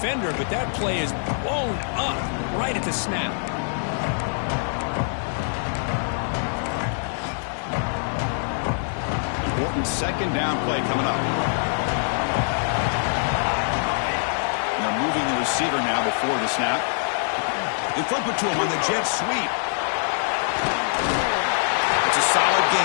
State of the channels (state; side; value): silent; right; digital silence